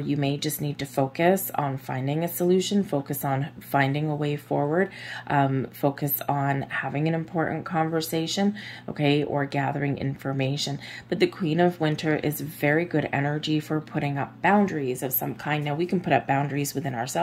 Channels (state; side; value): identical; both; correlation 1.00